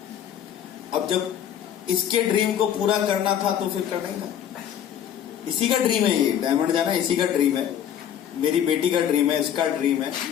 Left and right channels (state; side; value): quieter; right; 9.7 dB